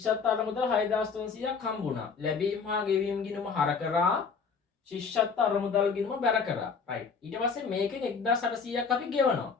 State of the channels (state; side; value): quieter; right; 5.6 dB